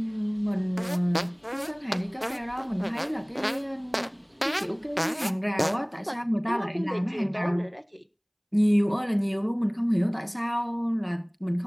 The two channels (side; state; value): both; identical; correlation 1.00